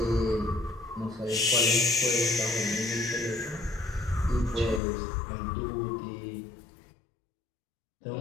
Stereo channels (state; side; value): drops out; right; at 4.8 s